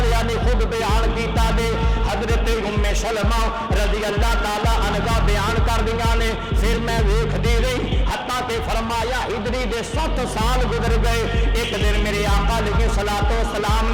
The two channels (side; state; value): both; identical; correlation 1.00